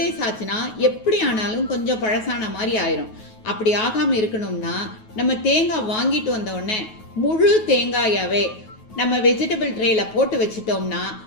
days ஆச்சுன்னா எப்படி ஆனாலும் கொஞ்சம் பழசான மாதிரி ஆயிரும். அப்படி ஆகாமல் இருக்கணும்னா நம்ம தேங்காய் வாங்கிட்டு வந்த உடனே முழு தேங்காயாவே நம்ம வெஜிடபிள் ட்ரேயில் போட்டு வச்சிட்டோம்னா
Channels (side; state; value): right; late; 9.3 ms